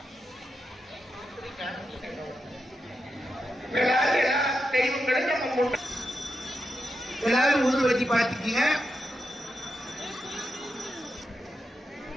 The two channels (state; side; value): normal; both; correlation 0.86